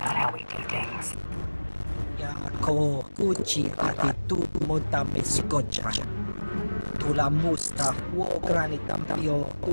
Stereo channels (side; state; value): both; inverted; correlation -1.00